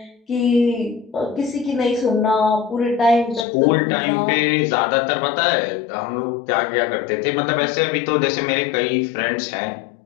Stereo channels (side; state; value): right; drops out; at 3.5 s